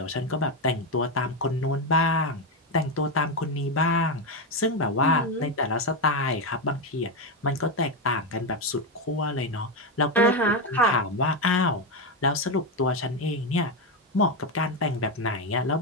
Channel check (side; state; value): both; normal; correlation 0.09